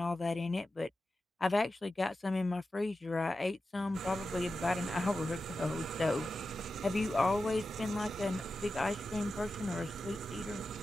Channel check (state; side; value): normal; both; correlation 0.92